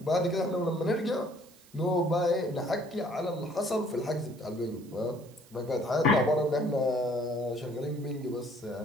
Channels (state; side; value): noise; right; hiss, 26 dB below the sound